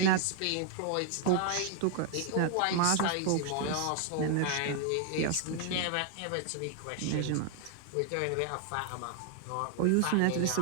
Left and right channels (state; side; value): different; both; correlation 0.00